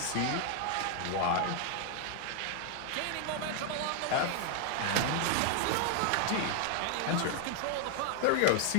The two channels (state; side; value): different; both; correlation 0.00